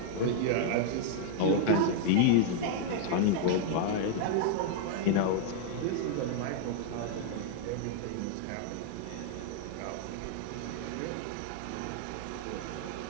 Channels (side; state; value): both; different; correlation -0.01